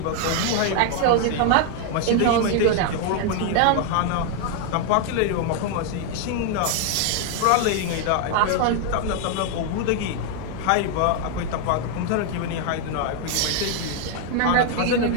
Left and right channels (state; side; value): different; both; correlation 0.00